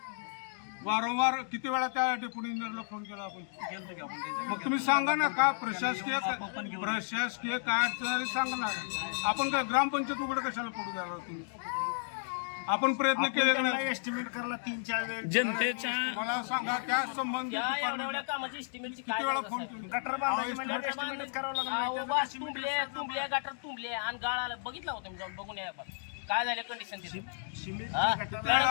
वारंवार किती वेळा त्या डेप्युटी इंजिनियरला फोन केला आपण? मग तुम्ही सांगा ना का प्रशासकीय काय अडचण आली सांगा ना. आपण काय ग्रामपंचायत उघड कशाला पडू द्यायला तुम्ही? आपण प्रयत्न केले का नाही? एस्टिमेट करायला 3-4 वेळ जनतेच्या मला सांगा त्या संबंधित एवढ्या डिपार्टमेंट कामाची एस्टिमेटची किती वेळा फोन केले? गटर बांधायची एस्टिमेट करावं लागणार. तुंबले गटर तुंबले आणि गाळ आला. बघितला होता मी जाऊन बघून या आपण. काय झालं कंडिशन तिथे?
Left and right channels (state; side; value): silent; right; digital silence